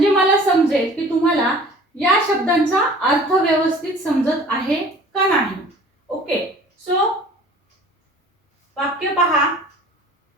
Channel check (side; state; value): both; normal; correlation 0.47